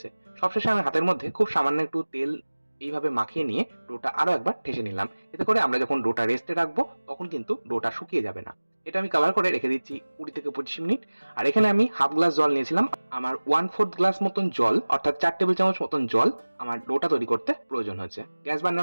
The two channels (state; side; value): inverted; both; correlation -1.00